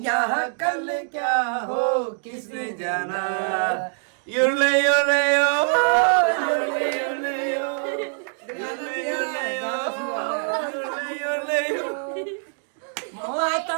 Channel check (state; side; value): silent; left; digital silence